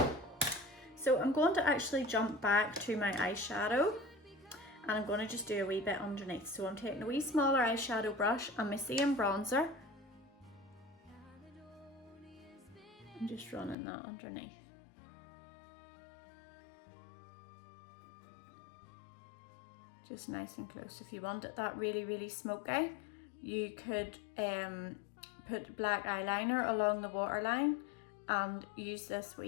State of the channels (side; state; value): right; drops out; at 13.8 s